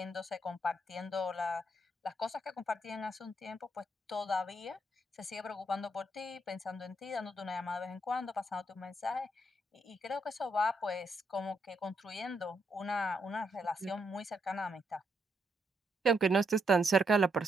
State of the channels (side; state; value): both; normal; correlation 0.77